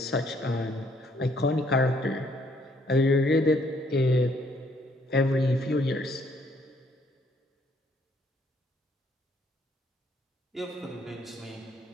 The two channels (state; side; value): normal; both; correlation 0.67